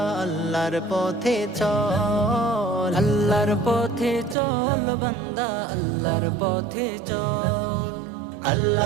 আল্লাহর পথে চল। আল্লাহর পথে চল বান্দা, আল্লাহর পথে চল।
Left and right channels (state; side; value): drops out; left; at 4.4 s